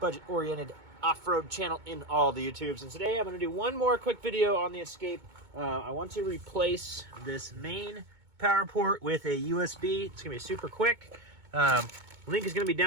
off-road channel in all the YouTubes. And today I'm going to do one more quick video on the Escape. I want to replace this main power port with a USB. It's going to be super quick. Link is going to be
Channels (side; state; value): left; late; 2.2 ms